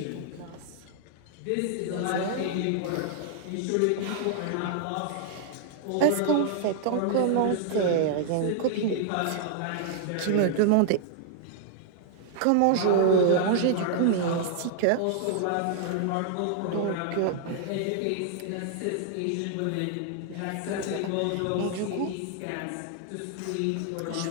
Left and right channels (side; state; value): both; different; correlation -0.01